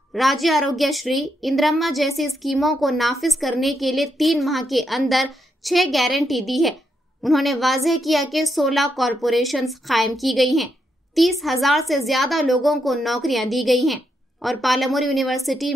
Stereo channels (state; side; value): normal; both; correlation 0.81